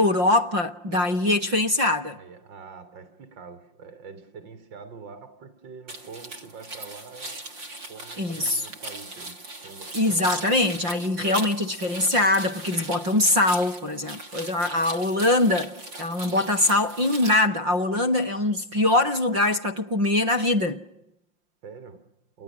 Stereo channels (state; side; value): late; left; 5.7 ms